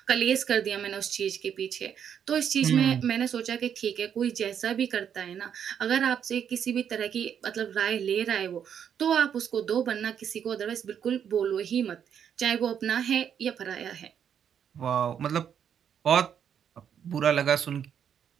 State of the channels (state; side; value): quieter; left; 8.4 dB